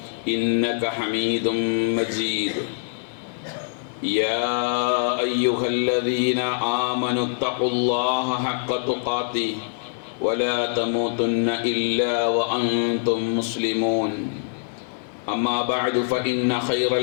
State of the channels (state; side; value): silent; right; digital silence